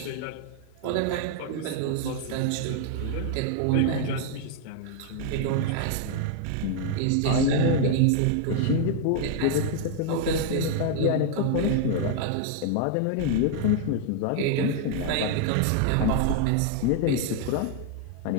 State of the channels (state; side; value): different; both; correlation 0.00